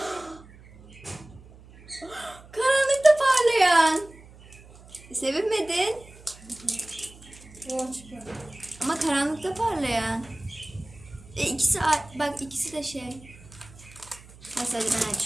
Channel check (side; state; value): right; noise; hum, 22 dB below the sound